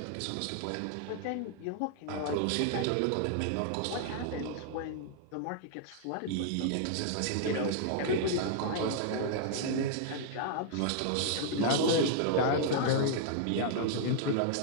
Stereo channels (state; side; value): different; both; correlation -0.01